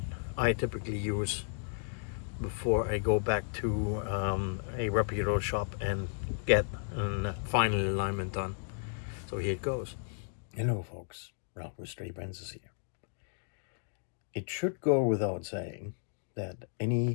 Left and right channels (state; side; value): silent; right; digital silence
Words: I typically use before I go back to a reputable shop and get a final alignment done. So here it goes. Hello folks, Ralph with Stray Brands here. It should go without saying that